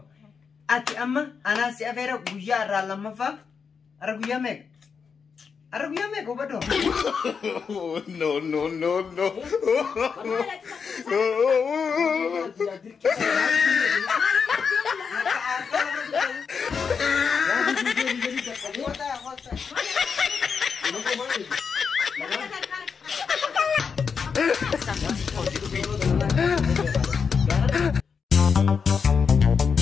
أتي أما أنا سأفير بوجا رالما فا أرجويا ميك هو بدو no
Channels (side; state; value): right; quieter; 5.9 dB